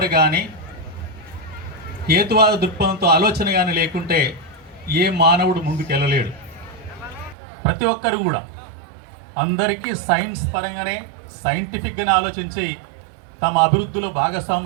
కానీ హేతువాద దృక్పథంతో ఆలోచన కానీ లేకుంటే ఏ మానవుడు ముందుకెళ్ళలేడు. ప్రతి ఒక్కరు కూడా అందరికీ సైన్స్ పరంగానే సైంటిఫిక్గానే ఆలోచించి తమ అభివృద్ధిలో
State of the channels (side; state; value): left; drops out; at 7.4 s